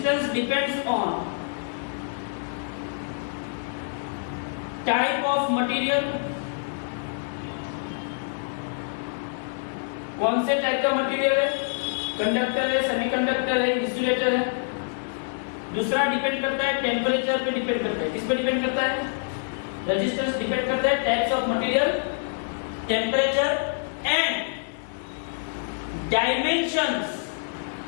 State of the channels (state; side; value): silent; right; digital silence